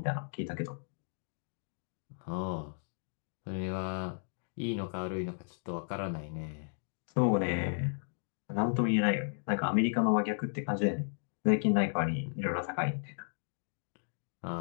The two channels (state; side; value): silent; right; digital silence